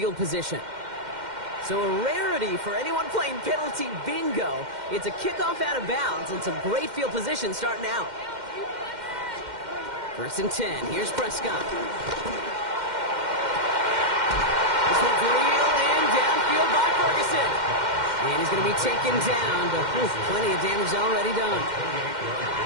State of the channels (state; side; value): late; left; 2.1 ms